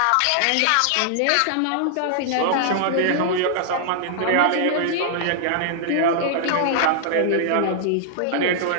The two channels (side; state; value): both; different; correlation -0.01